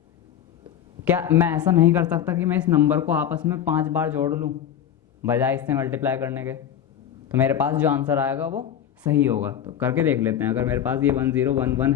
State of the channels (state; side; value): quieter; right; 9.8 dB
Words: क्या मैं ऐसा नहीं कर सकता कि मैं इस नंबर को आपस में 5 बार जोड़ लूँ बजाय इससे मल्टीप्लाई करने के? तो मेरे पास जो आंसर आएगा वो सही होगा। तो करके देख लेते हैं। अगर मेरे पास ये 1011